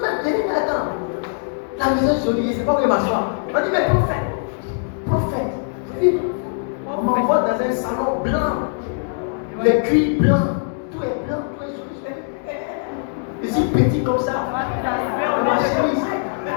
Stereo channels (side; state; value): right; silent; digital silence